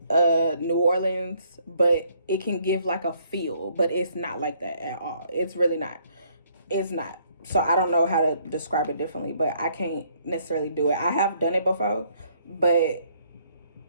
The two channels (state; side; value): inverted; both; correlation -0.67